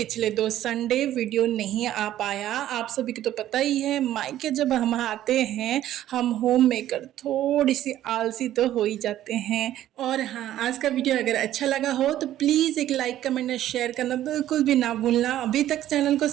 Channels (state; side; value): quieter; left; 12.7 dB